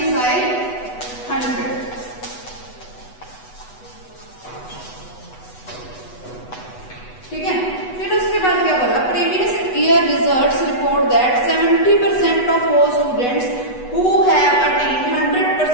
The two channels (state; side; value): late; right; 8.1 ms